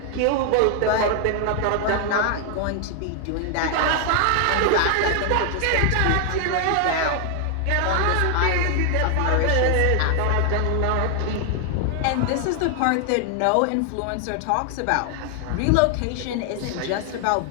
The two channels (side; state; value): both; different; correlation 0.00